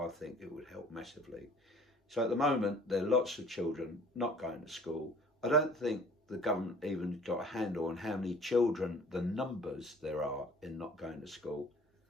think it would help massively. So at the moment, there are lots of children not going to school. I don't think the government even got a handle on how many children, the numbers there are in not going to school.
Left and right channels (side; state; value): both; normal; correlation 0.51